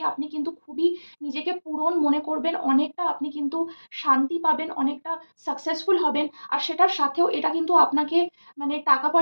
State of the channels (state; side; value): inverted; both; correlation -1.00